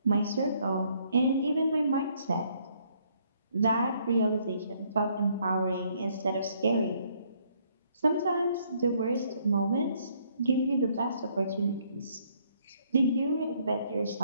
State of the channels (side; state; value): both; inverted; correlation -0.67